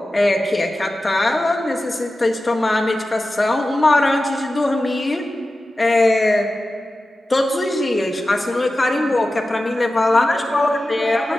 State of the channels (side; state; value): both; normal; correlation 0.94